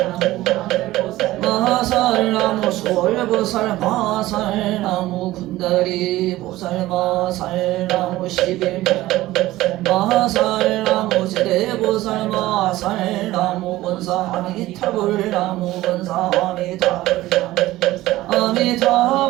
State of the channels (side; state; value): left; quieter; 16.7 dB